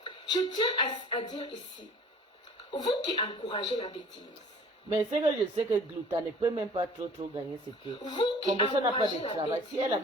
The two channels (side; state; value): both; normal; correlation 0.48